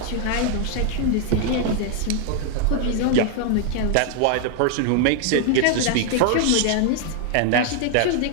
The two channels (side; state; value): both; different; correlation 0.00